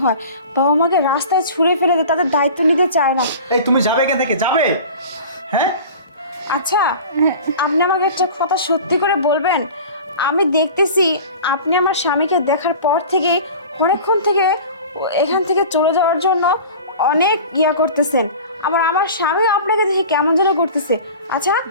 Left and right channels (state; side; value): inverted; both; correlation -0.39